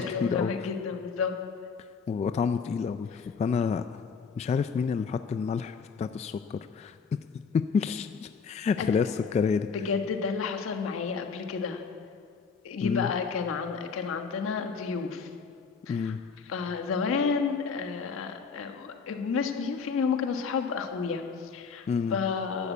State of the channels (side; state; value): right; quieter; 5.5 dB